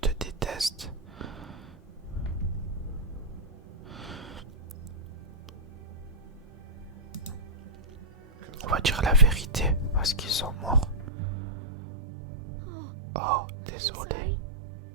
détestent? On va dire la vérité, parce qu'ils sont morts. Oh, désolé.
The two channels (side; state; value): left; drops out; at 11.1 s